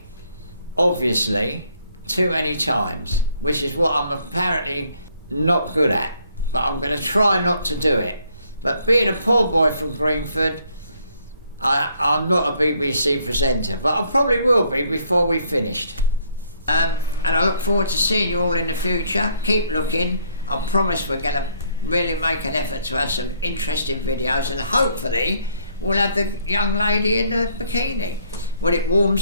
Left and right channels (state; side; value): inverted; both; correlation -0.67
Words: obviously, too many times, which is what I'm apparently not good at. But I'm going to try not to do it. But being a poor boy from Greenford, I'm not a BBC presenter, but I probably will be before we've finished. And I look forward to seeing you all in the future. Keep looking. I promise we're going to really make an effort to have some interesting videos, and hopefully we'll have the young lady in the bikini when it